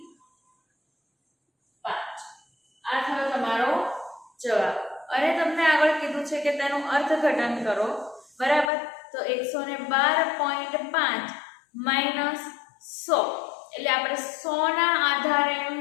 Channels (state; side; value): drops out; right; at 8.7 s